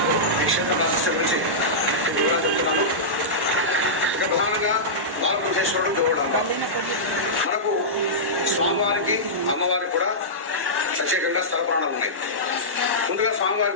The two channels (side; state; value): left; late; 1.1 ms